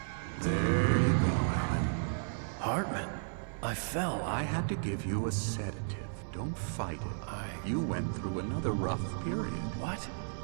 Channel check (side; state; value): left; silent; digital silence